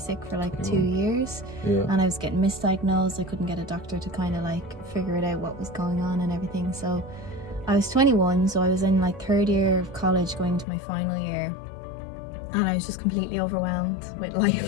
for like 2 years, and I was getting misdiagnosed. I couldn't get a doctor to kind of like figure it out what was going on and everything. So I was 21, so I was in like third year of college going into my final year, and I was just completely overwhelmed with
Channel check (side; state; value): right; drops out; at 10.7 s